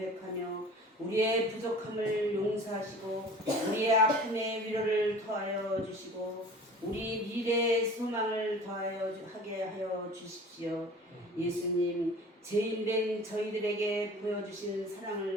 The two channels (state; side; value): normal; both; correlation 0.43